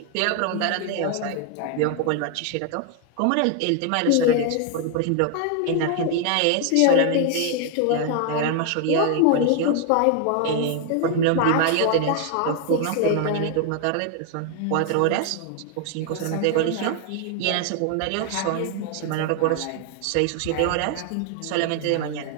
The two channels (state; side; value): different; both; correlation 0.01